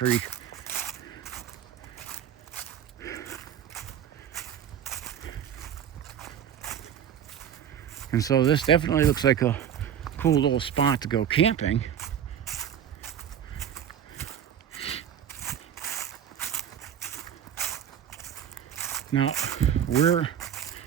And so this definitely looks like a cool little spot to go camping. Now, we're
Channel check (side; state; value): left; quieter; 9.3 dB